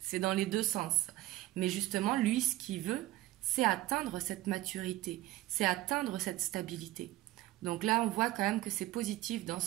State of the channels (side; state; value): left; quieter; 16.3 dB